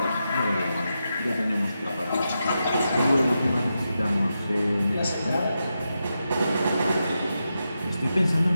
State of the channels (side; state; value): both; inverted; correlation -0.88